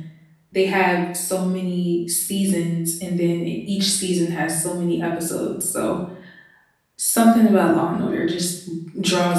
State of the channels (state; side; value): identical; both; correlation 1.00